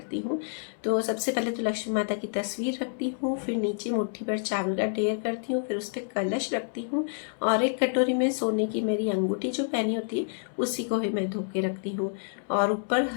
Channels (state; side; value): silent; right; digital silence